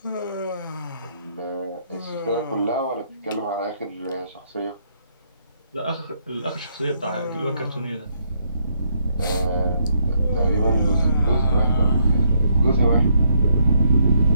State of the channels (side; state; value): both; inverted; correlation -0.73